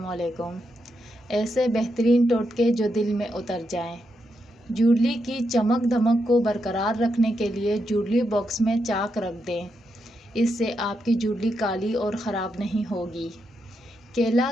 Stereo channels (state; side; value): normal; both; correlation 0.83